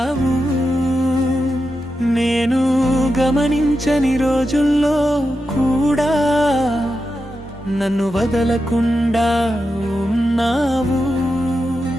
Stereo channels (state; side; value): normal; both; correlation 0.89